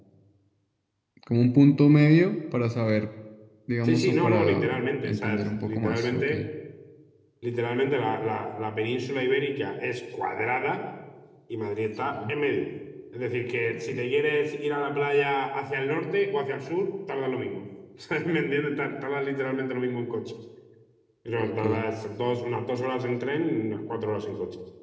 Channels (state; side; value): identical; both; correlation 1.00